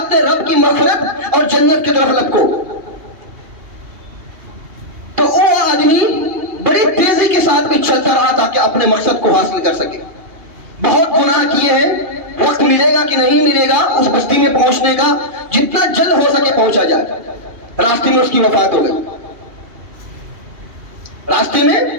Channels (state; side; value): late; left; 2.4 ms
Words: رب کی مغفرت اور جنت کی طرف لپکو۔ تو وہ آدمی بڑی تیزی کے ساتھ میں چلتا رہا تاکہ اپنے مقصد کو حاصل کر سکے۔ بہت گناہ کیے ہیں، وقت ملے گا کہ نہیں ملے گا اس بستی میں پہنچنے کا، جتنا جلد ہو سکے پہنچا جائے۔ راستے میں اس کی وفات ہو گئی، راستے میں